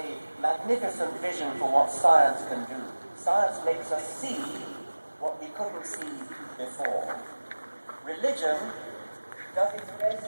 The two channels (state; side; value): inverted; both; correlation -1.00